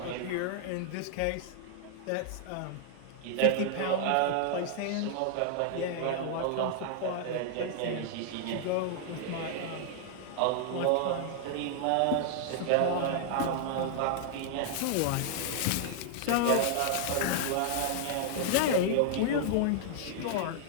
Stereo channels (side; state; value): both; different; correlation -0.01